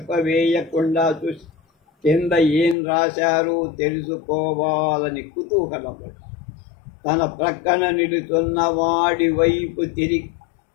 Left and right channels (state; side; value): drops out; right; at 2.8 s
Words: చూసి కింద ఏం రాశారో తెలుసుకోవాలని కుతూహలపడు. తన ప్రక్కన నిలుచున్న వాడి వైపు తిరిగి,